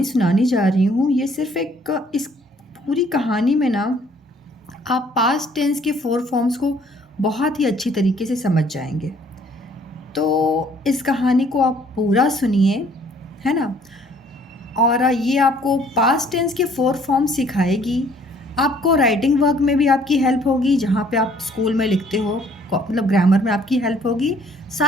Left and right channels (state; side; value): normal; both; correlation 0.60